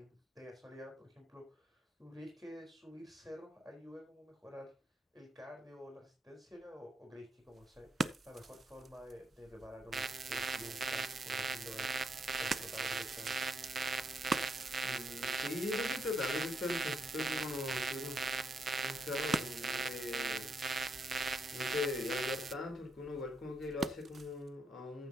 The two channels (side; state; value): both; normal; correlation 0.77